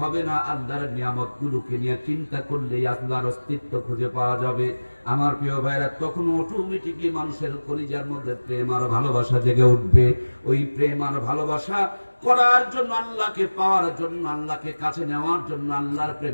হবে না, আল্লাহর নিয়ামতগুলোকে নিয়ে চিন্তা করলেই আল্লাহর অস্তিত্ব খুঁজে পাওয়া যাবে। আমার প্রিয় ভাইরা, তখন অটোমেটিকলি মানুষের কলিজার মধ্যে প্রেম আর ভালোবাসা জেগে উঠবে। ওই প্রেম আর ভালোবাসা করার জন্য, আল্লাহকে পাওয়ার জন্য, আল্লাহকে কাছে নেওয়ার জন্য, আল্লাহর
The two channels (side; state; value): both; inverted; correlation -1.00